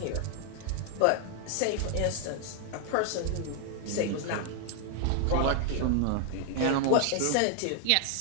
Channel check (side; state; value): both; different; correlation 0.00